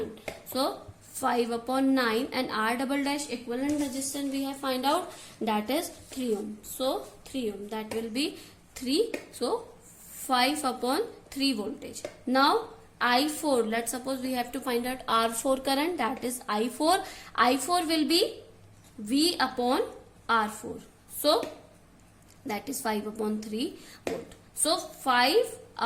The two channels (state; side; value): identical; both; correlation 1.00